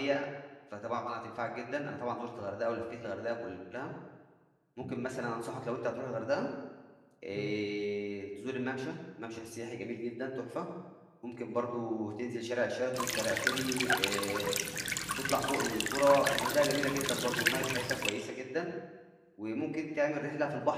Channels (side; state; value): both; identical; correlation 1.00